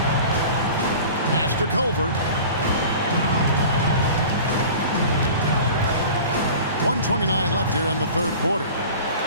Pass to Culver. 1:29 left here in the third quarter.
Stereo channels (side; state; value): both; inverted; correlation -0.40